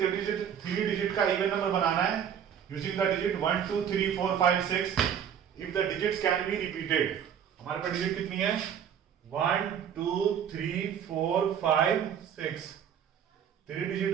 digit का इवन नंबर बनाना है using the digit 1 2 3 4 5 6 if the digits can be repeated. हमारे पास डिजिट कितनी है 1 2 3 4 5 6, 3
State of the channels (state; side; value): quieter; left; 8.6 dB